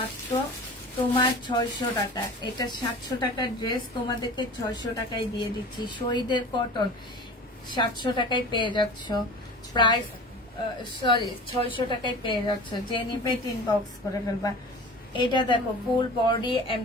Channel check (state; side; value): normal; both; correlation 0.37